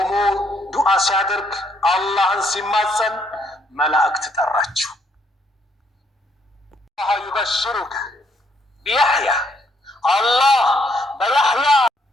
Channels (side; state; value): both; normal; correlation 0.70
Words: ዱዓ ሲያደርግ አላህን ሲማጸን መላእክት ጠራቸው الله يبشرك بيحيى الله بيحيى